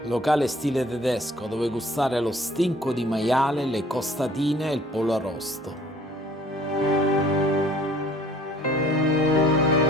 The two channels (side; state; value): both; normal; correlation 0.54